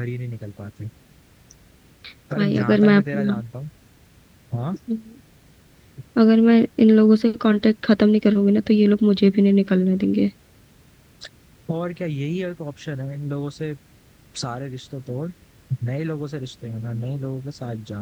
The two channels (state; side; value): identical; both; correlation 1.00